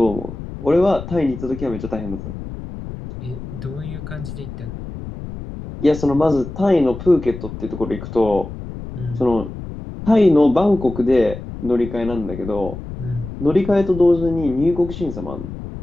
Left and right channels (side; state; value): left; noise; rumble, 10 dB below the sound